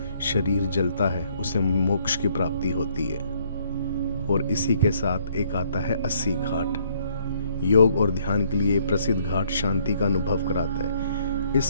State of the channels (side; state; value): both; inverted; correlation -0.66